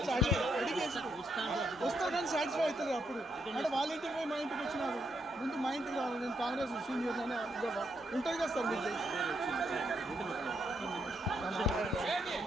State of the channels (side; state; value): both; normal; correlation 0.78